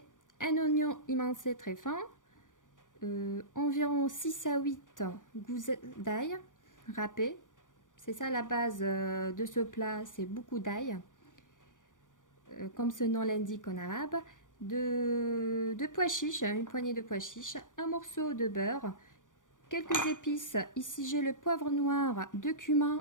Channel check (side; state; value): right; late; 0.88 ms